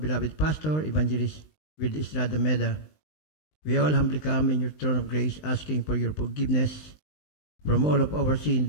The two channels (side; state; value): right; late; 19 ms